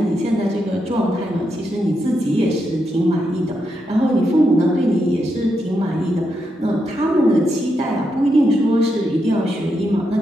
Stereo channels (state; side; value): normal; both; correlation 0.83